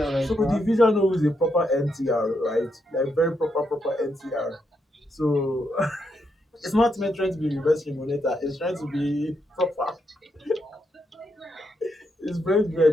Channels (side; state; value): both; normal; correlation 0.80